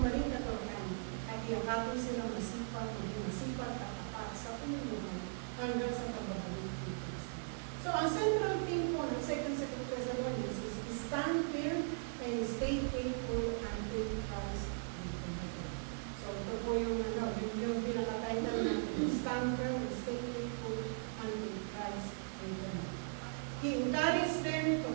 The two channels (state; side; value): silent; left; digital silence